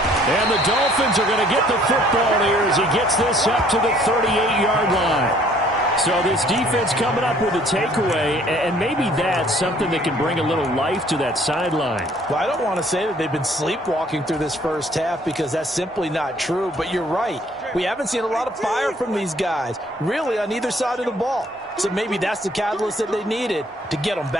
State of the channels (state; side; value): normal; both; correlation 0.59